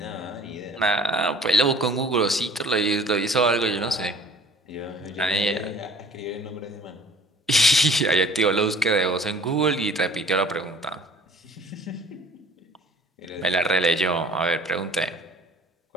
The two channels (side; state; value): both; normal; correlation 0.50